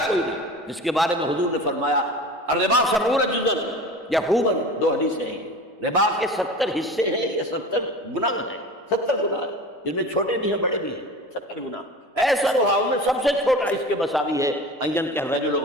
کوئی نہیں، جس کے بارے میں حضور نے فرمایا الربا 70 جزء یحوبا، 2 حدیثیں ہیں، ربا کے 70 حصے ہیں یا 70 گناہ ہیں، 70 گناہ ہیں، جن میں چھوٹے بھی ہیں بڑے بھی ہیں، 70 گناہ۔ ایسا رہا ان میں سب سے چھوٹا اس کے مساوی ہے ان کہ الرجل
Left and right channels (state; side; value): normal; both; correlation 0.35